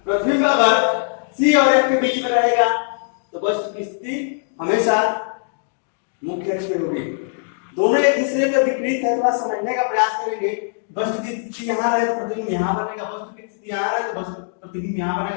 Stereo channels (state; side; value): silent; right; digital silence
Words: प्रतिबिंब अगर C और F के बीच में रहेगा तो वस्तु की स्थिति हमेशा मुख्य अक्ष में होगी। दोनों एक दूसरे के विपरीत है, थोड़ा समझने का प्रयास करेंगे। वस्तु की स्थिति यहाँ रहे तो प्रतिबिंब यहाँ बनेगा, वस्तु की स्थिति यहाँ रहे तो प्रतिबिंब यहाँ